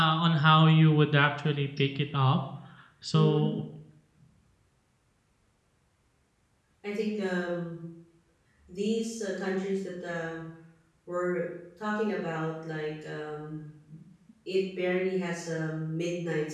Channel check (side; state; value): both; identical; correlation 1.00